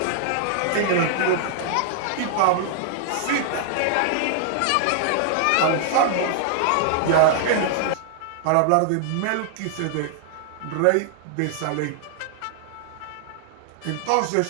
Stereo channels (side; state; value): both; different; correlation -0.01